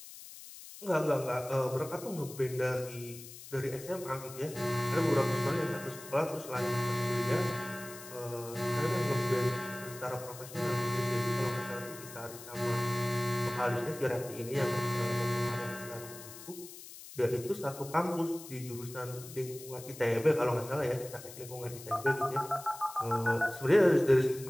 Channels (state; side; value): noise; left; hiss, 15 dB below the sound